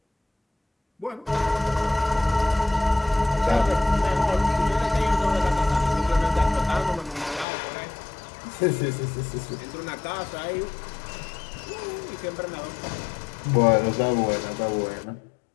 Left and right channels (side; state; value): right; drops out; at 7.5 s